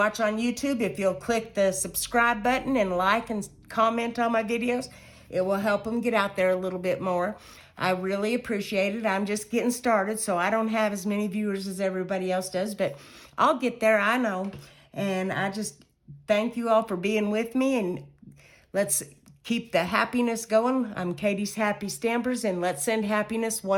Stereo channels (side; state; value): both; identical; correlation 1.00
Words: on YouTube, if you'll click the subscribe button and like and comment on my videos, it will help them get out there a little bit more. I really appreciate it. I'm just getting started, so I don't have as many viewers as everybody else does, but I'll get there, I know. And I just thank you all for being with me, and let's keep the happiness going. I'm Katie's Happy Stampers, and let's send happiness